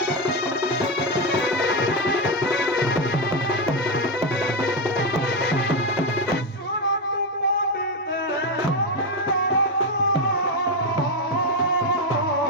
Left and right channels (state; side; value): normal; both; correlation 0.08